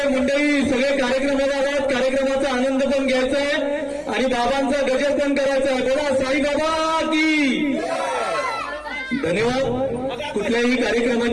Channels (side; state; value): both; identical; correlation 1.00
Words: मंडळी सगळे कार्यक्रमाला आवाज, कार्यक्रमाचा आनंद पण घ्यायचा आहे आणि बाबांचा गजर पण करायचा आहे। बोला साई बाबा की। धन्यवाद। कुठल्याही